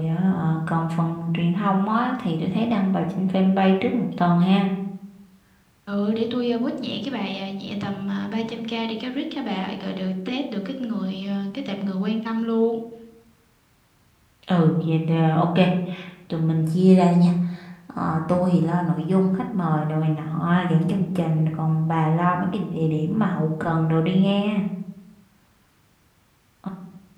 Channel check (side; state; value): both; identical; correlation 1.00